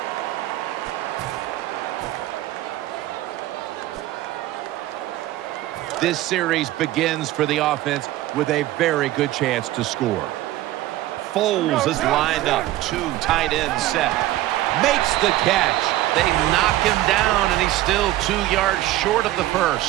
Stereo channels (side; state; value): left; quieter; 15.5 dB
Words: This series begins for the offense with a very good chance to score. Foles is lined up. 2 tight ends set. Makes the catch. They knock him down, and he's still 2 yards short of the